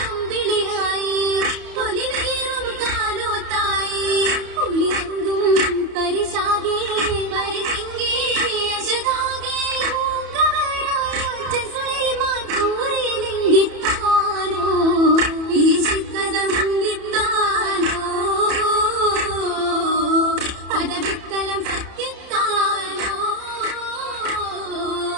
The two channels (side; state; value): left; late; 30 ms